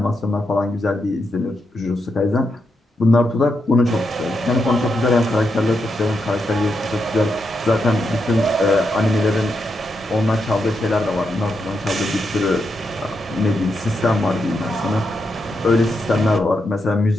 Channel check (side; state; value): both; normal; correlation 0.83